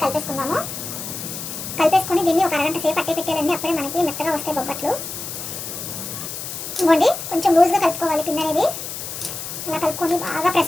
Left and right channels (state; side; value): noise; left; hiss, 7 dB below the sound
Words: కలిపేసుకుందాము. కలిపేసుకొని దీన్ని ఒక అరగంట సేపు అట్టే పెట్టాలండి. అప్పుడే మనకి మెత్తగా వస్తాయి బొబ్బట్లు. ఇవ్వండి కొంచెం లూజ్గా కలుపుకోవాలి పిండి అనేది. అలా కలుపుకొని బాగా